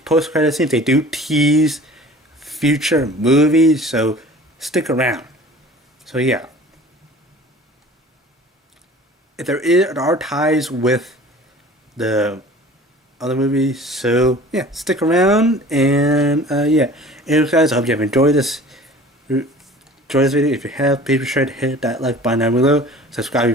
credit scenes, they do tease future movies, so stick around. So yeah, if there are ties with the other movies, so yeah, stick around. And yeah, anyways guys, I hope you have enjoyed this video. If you have, please be sure to hit that like button down below, subscribe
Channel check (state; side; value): normal; both; correlation 0.44